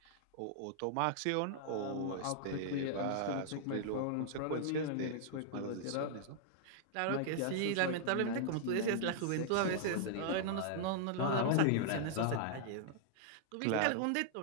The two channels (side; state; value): both; different; correlation -0.01